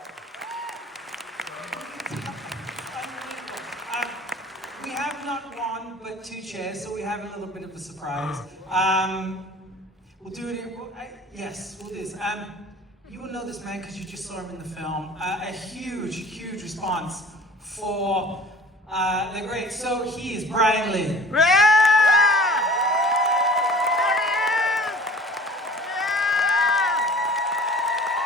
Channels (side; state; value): both; normal; correlation 0.45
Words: We have not one, but 2 chairs, so we have a little bit of a surprise. We'll do it. Yes, we'll do this. You will know this man because you just saw him in the film. A huge, huge response for the great. So he is Brian Lee.